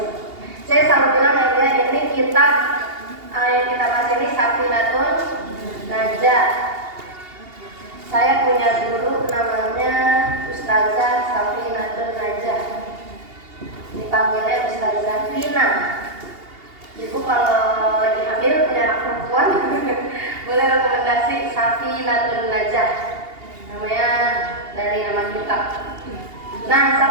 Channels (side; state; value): left; late; 2.8 ms